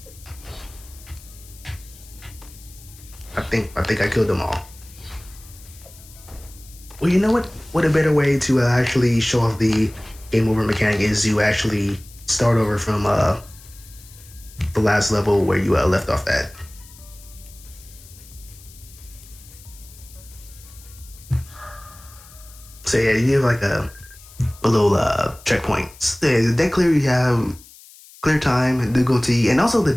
I think I killed them all. Well, you know what? What a better way to actually show off the game over mechanic is to actually start over from the last level where you left off at. So yeah, you have like a little checkpoints. The deck clear, you have clear time and difficulty, and also the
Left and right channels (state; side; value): noise; left; hiss, 21 dB below the sound